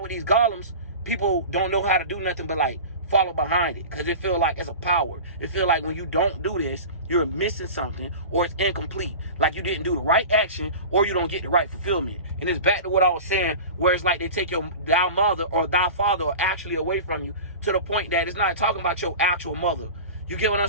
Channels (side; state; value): both; inverted; correlation -0.34